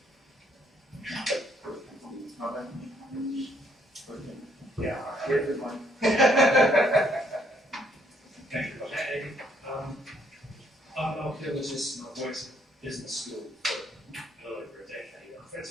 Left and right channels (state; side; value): normal; both; correlation 0.69